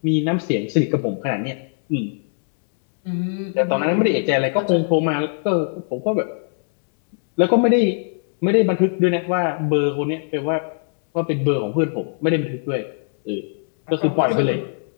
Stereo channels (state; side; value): silent; right; 63 dB below the other